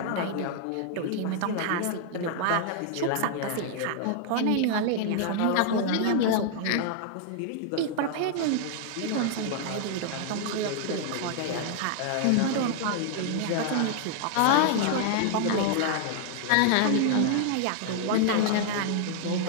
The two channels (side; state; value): both; different; correlation -0.01